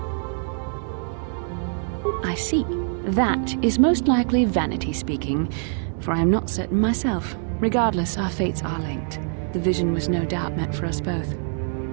I see. That is most likely vanity speaking, for I am not certain myself. Regardless, our fates are linked. The vision was no doubt meant for us both.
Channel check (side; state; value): left; silent; 61 dB below the other